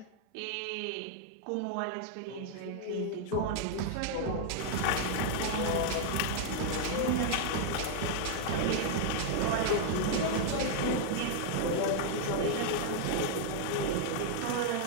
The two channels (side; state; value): both; different; correlation -0.01